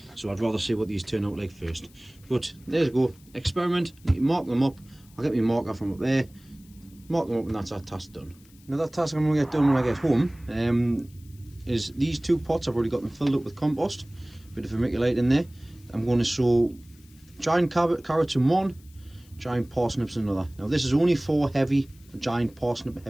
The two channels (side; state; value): left; noise; hiss, 28 dB below the sound